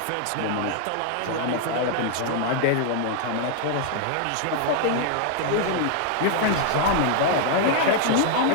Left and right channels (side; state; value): both; different; correlation 0.00